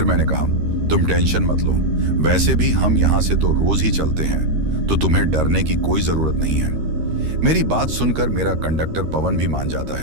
मैंने कहा, तुम टेंशन मत लो, वैसे भी हम यहाँ से तो रोज ही चलते हैं, तो तुम्हें डरने की कोई जरूरत नहीं है। मेरी बात सुनकर मेरा कंडक्टर पवन भी मान जाता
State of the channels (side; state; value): left; late; 13 ms